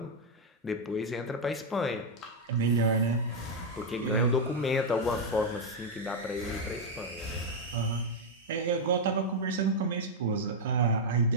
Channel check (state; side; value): normal; both; correlation 0.00